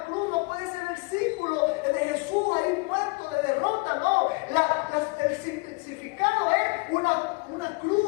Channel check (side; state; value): right; quieter; 29.1 dB